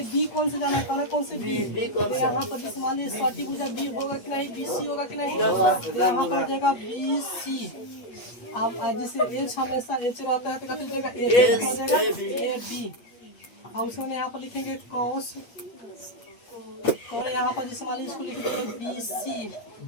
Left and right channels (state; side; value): late; right; 8.5 ms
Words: बी कौन से जाना है, कौन से बी, तो यहाँ पर जिसे मान लीजिए सटी भुजा बी होगा कि नहीं, बी सी होगा कि नहीं, तो यहाँ पर जाएगा बी सी। अब जिसे एच हमेशा एच रहता है तो कथी जाएगा एच हो जाएगा ए बी। और उसमें यहाँ पर लिखेंगे कॉस, और यहाँ पर जिसे मान लीजिए इसको लिखेंगे बी सी